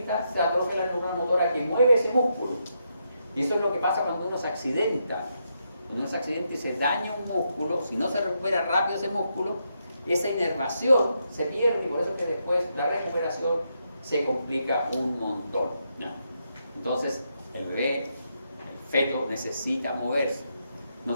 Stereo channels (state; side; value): inverted; both; correlation -0.81